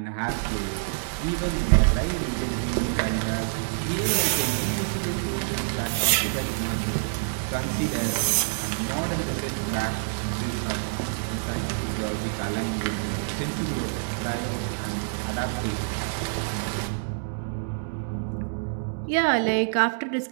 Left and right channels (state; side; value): silent; left; digital silence